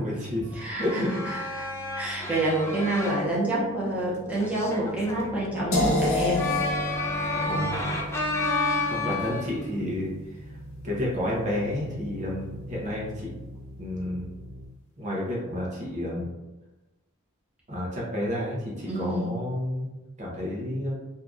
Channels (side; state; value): both; normal; correlation 0.42